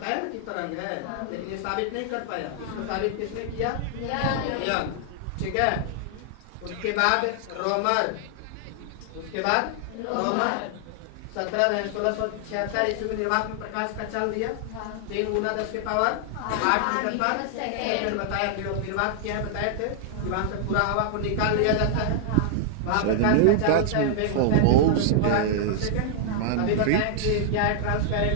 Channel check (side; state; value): both; different; correlation -0.01